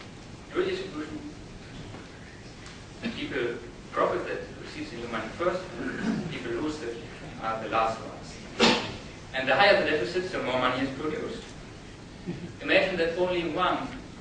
redistribution. People profit that receives the new money first, and people lose that are the last ones. And the higher the deficit, the more money is produced. Imagine that only one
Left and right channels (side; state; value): both; identical; correlation 1.00